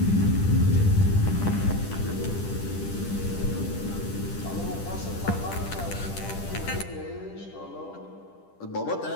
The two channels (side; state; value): right; late; 10 ms